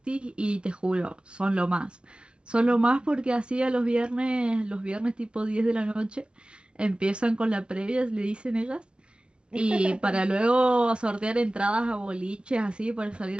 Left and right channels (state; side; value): late; left; 0.057 ms